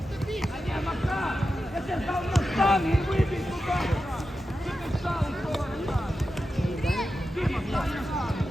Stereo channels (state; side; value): normal; both; correlation 0.90